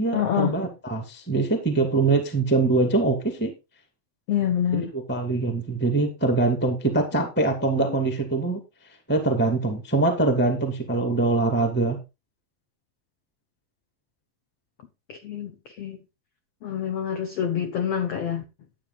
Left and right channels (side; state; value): both; normal; correlation 0.07